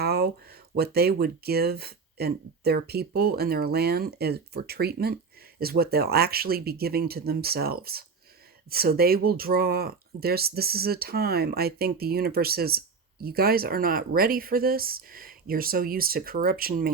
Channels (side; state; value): left; quieter; 4.9 dB